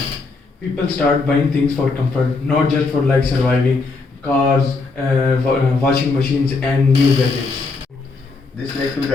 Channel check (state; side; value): quieter; right; 3.9 dB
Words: People start buying things for comfort, not just for like surviving, cars, washing machines, and new gadgets. This led to the